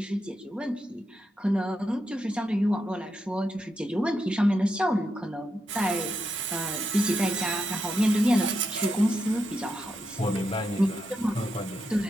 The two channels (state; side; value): normal; both; correlation 0.84